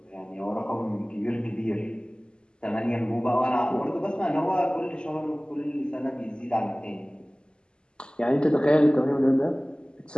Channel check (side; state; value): right; late; 0.048 ms